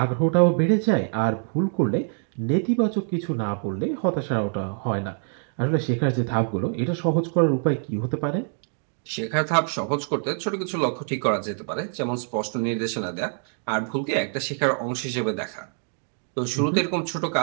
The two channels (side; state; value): left; silent; 62 dB below the other